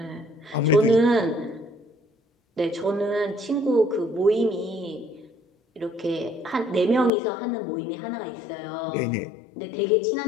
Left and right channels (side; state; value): right; drops out; at 7.1 s